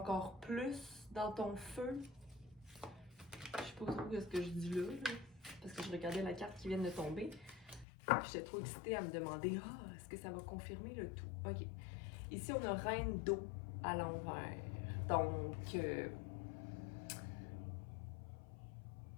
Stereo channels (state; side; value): drops out; right; at 7.9 s